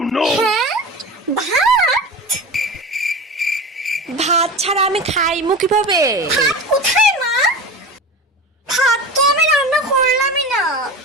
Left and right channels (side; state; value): both; normal; correlation 0.30